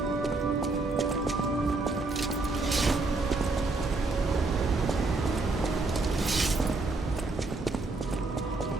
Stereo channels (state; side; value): quieter; left; 3.4 dB